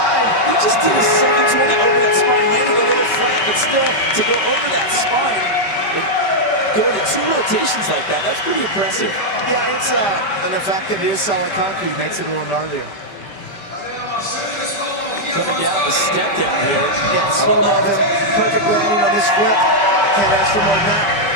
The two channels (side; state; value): right; late; 5.1 ms